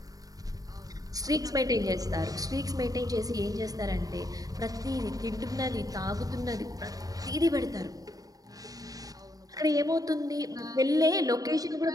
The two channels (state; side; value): late; left; 0.18 ms